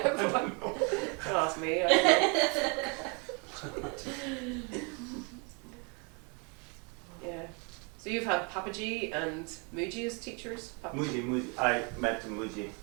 Don't ask me. I don't know. Yeah. So you've had Papaji and Muji as teachers? Muji, I met Muji.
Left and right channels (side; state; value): left; quieter; 34.0 dB